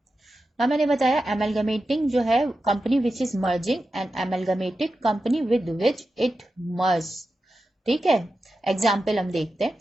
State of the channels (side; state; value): both; normal; correlation 0.91